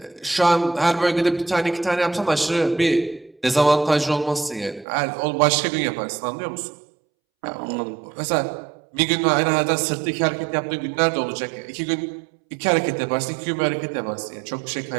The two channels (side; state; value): left; drops out; at 4.9 s